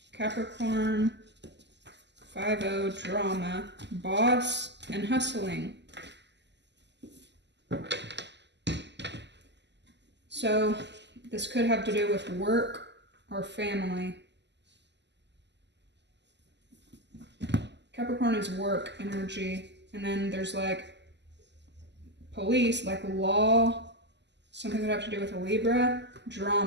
Capricorn. 5-0, drama, boss, and hustling. So this could have to do with work or family. Capricorn is work energy, and then there's like police, like law, something that have to do with a Libra,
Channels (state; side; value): late; left; 0.51 ms